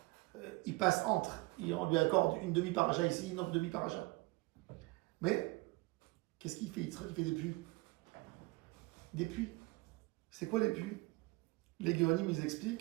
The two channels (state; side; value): quieter; left; 23.2 dB